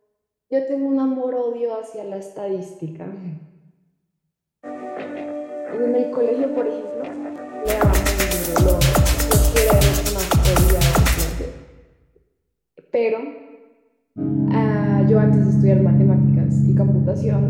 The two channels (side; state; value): both; identical; correlation 1.00